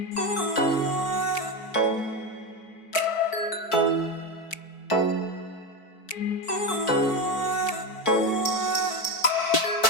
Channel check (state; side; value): late; right; 4.5 ms